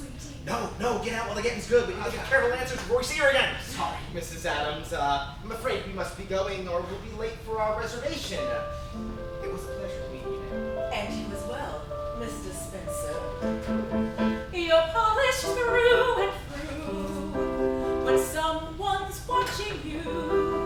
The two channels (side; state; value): both; identical; correlation 1.00